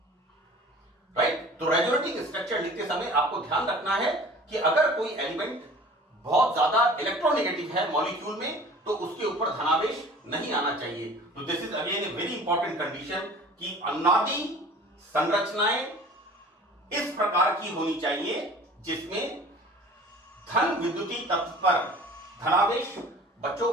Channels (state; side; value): normal; both; correlation 0.45